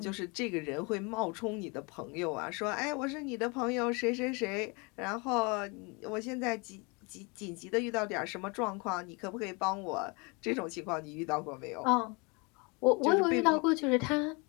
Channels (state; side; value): quieter; right; 29.8 dB